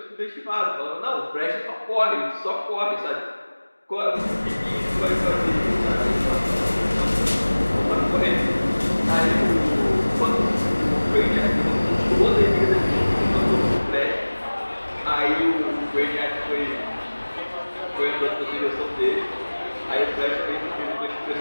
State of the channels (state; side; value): inverted; both; correlation -1.00